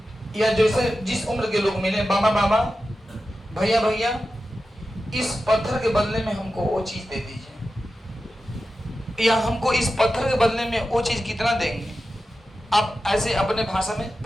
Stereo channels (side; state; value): both; normal; correlation 0.92